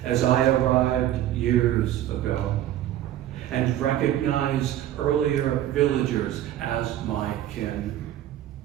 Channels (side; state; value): left; quieter; 12.4 dB